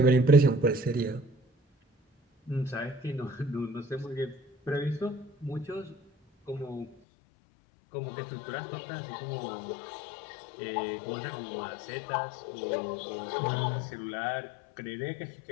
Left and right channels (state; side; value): drops out; right; at 7.0 s